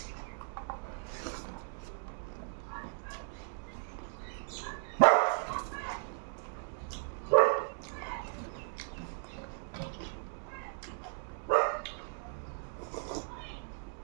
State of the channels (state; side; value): silent; left; digital silence